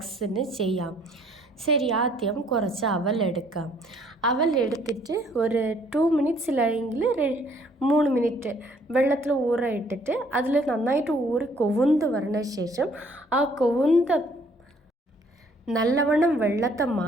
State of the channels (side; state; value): both; normal; correlation 0.61